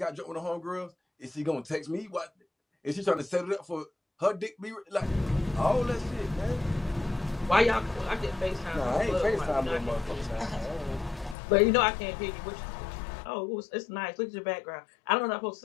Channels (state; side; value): drops out; right; at 11.4 s